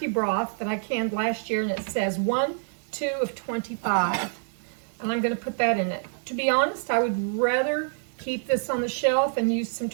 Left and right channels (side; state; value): left; silent; digital silence